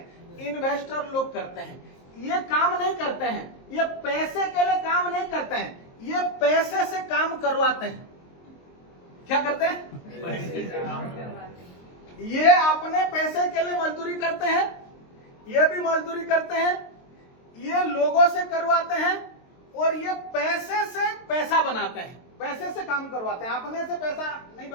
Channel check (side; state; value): right; late; 23 ms